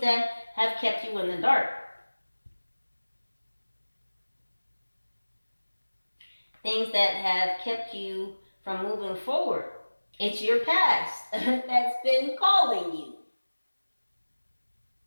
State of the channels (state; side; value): inverted; both; correlation -1.00